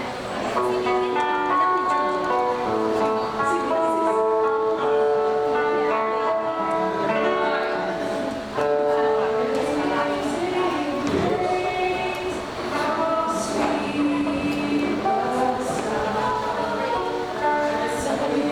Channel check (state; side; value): identical; both; correlation 1.00